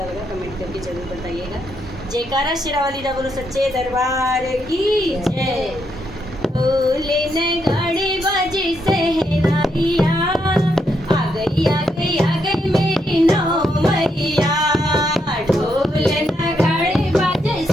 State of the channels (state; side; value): normal; both; correlation 0.78